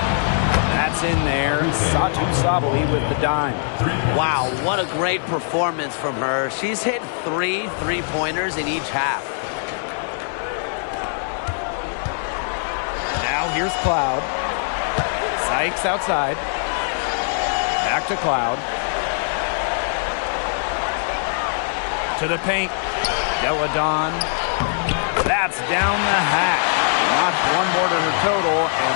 That's in there. Satu Sabali with the dime. Wow, what a great performance from her. She's hit 3 three-pointers in each half. Now here's Cloud. Sykes outside. Back to Cloud. To the paint. Deladon. That's down the hatch. Notched 1 more to her total,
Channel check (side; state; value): right; silent; digital silence